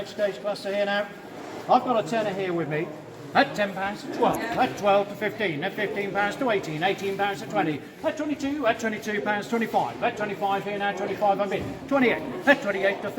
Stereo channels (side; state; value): both; identical; correlation 1.00